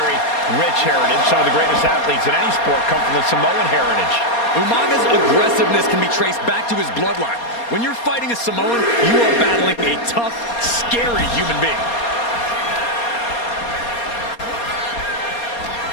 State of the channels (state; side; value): late; right; 4.2 ms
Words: rich heritage. Some of the greatest athletes in any sport come from the Samoan heritage. Umaga's aggressiveness can be traced back to his bloodline. When you're fighting a Samoan, you are battling a tough, scary human being.